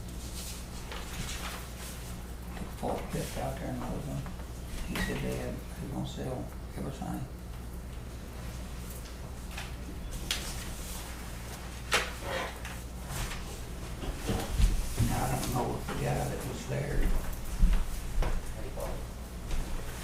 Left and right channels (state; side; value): identical; both; correlation 1.00